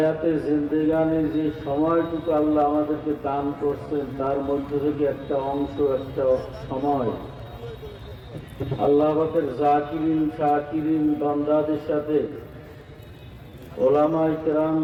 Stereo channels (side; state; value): both; identical; correlation 1.00